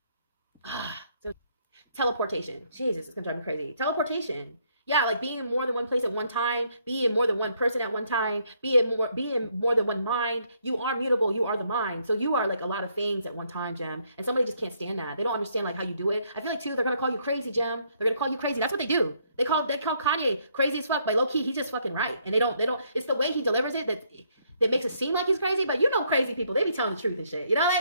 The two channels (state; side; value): inverted; both; correlation -0.70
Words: Teleportation. Jesus, it's gonna drive me crazy. Teleportation. Yeah, like being in more than one place at one time, be in more than one person at one time, be in more than one mind. You are mutable, you are the mind. So you are like a lot of things at one time, Gem. And somebody just can't stand that. They don't understand like how you do it. I feel like too, they're gonna call you crazy, Gem. They're gonna call you crazy. That's what they do. They call Kanye crazy as fuck, but low key, he's just fucking right. And they don't, it's the way he delivers it that makes it seem like he's crazy, but you know crazy people, they be telling the truth and shit. You know,